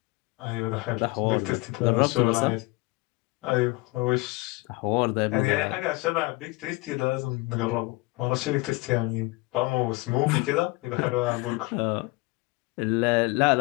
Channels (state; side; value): quieter; right; 24.3 dB